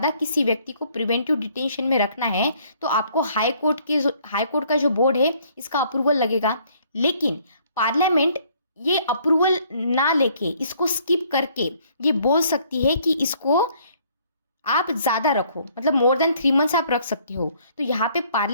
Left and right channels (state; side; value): inverted; both; correlation -0.62